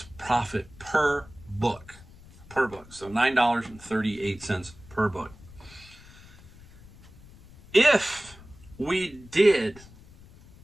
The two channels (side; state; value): left; noise; rumble, 21 dB below the sound